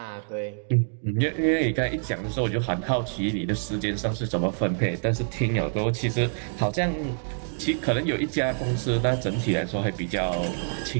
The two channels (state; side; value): silent; left; digital silence